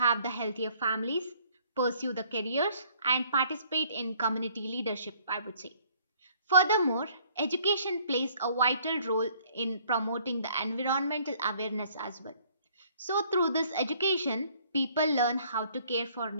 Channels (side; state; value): both; inverted; correlation -0.61